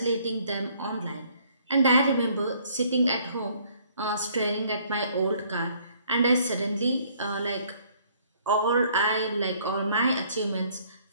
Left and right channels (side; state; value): both; inverted; correlation -0.62